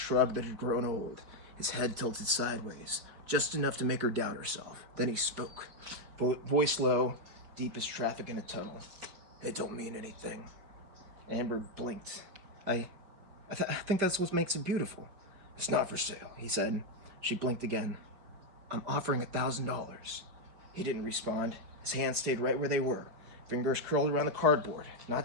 that had grown old. His head tilted sideways, just enough to make her doubt herself. Then he spoke. Voice low, deep as traffic in a tunnel. It don't mean anything. Amber blinked. I think that's what makes it beautiful. It's not for sale, he said. She blinked again. I'm offering $1,000. He didn't respond. His hands stayed right where they were. Fingers curled around the cardboard.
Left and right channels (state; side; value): late; left; 5.0 ms